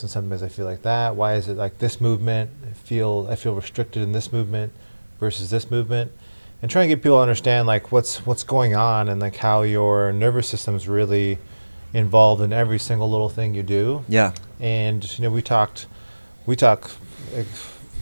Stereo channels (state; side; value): inverted; both; correlation -1.00